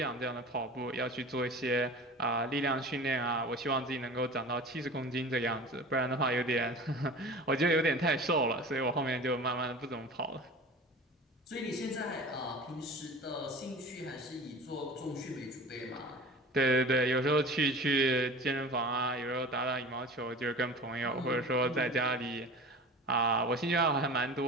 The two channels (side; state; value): both; normal; correlation 0.37